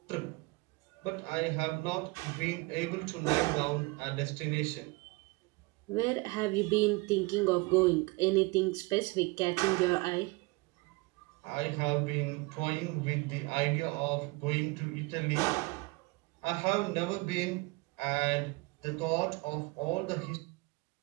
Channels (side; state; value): left; quieter; 25.6 dB